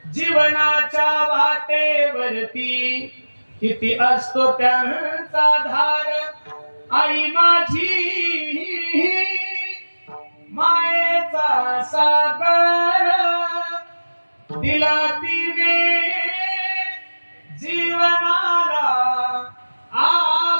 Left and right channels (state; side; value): inverted; both; correlation -1.00